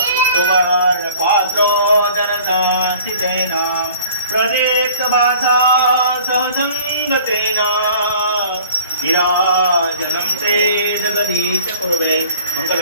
सुवर्णपात्रो जनसान्तितेन प्रदीप्तभासा सहसङ्गतेन विराजनं ते जगदीश कुरुवे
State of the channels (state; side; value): inverted; both; correlation -0.50